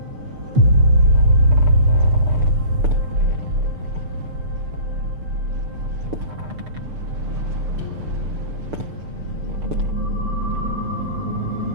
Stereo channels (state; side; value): late; left; 6.7 ms